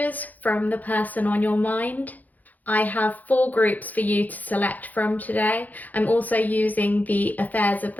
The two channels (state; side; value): late; right; 0.081 ms